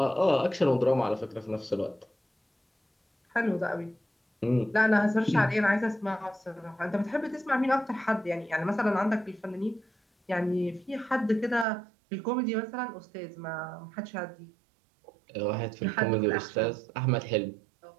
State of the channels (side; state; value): left; drops out; at 11.7 s